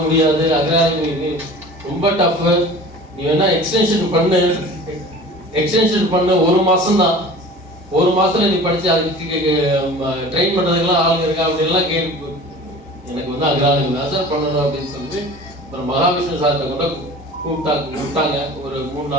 முடியாது, அக்ரானமி ரொம்ப டஃப்பு, நீ வேணா எக்ஸ்டென்ஷன் பண்ணு 1 மாதம் தான், 1 மாதத்துல நீ படிச்சு அதுக்கு ட்ரெயின் பண்ணுறதுக்கெல்லாம் ஆளுங்க இருக்கா அப்படின்லாம் கேட்டு எனக்கு வந்து அக்ரானமி தான் சார் பண்ணணும் அப்படின்னு சொல்லிட்டு அப்புறம் மகாவிஷ்ணு சார்கிட்ட கூட கூப்பிட்டாங்க. ஒரு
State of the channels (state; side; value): normal; both; correlation 0.41